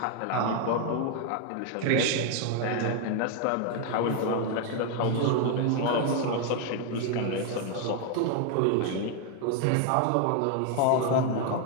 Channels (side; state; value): both; different; correlation 0.00